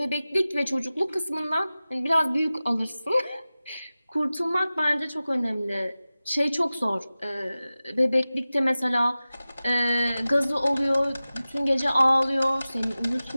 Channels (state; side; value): inverted; both; correlation -0.96